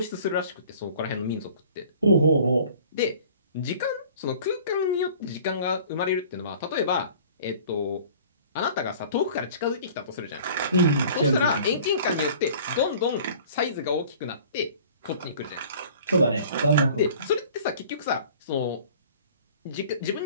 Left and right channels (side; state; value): both; inverted; correlation -0.48